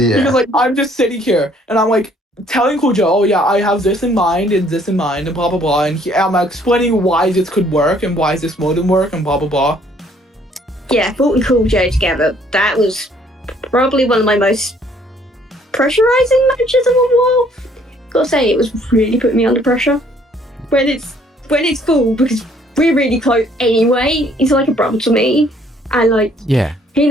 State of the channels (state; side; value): normal; both; correlation 0.62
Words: Because like I'm just sitting here and I'm like telling Cool Joe, oh yeah, I have this in mind and this in mind and blah blah blah, and I'm explaining why this could work and why this wouldn't work and blah blah blah. Yeah, Valt and Cool Joe together. That was probably one of my most pressurizing matches of a while. Gotta say, it was really putting me under pressure. When it's full, because we're really close anyway. He's like a brother to me, and like he